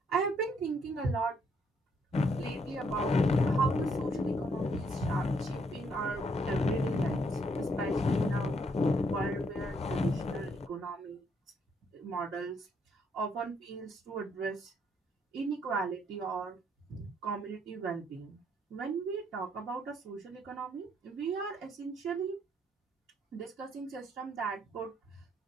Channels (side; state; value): both; normal; correlation 0.71